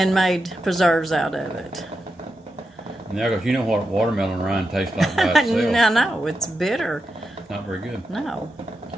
made preserves out of it? Yeah, because you know what watermelon rind tastes like by itself. No, it's bitter. Not very good. No.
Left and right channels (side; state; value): both; normal; correlation 0.88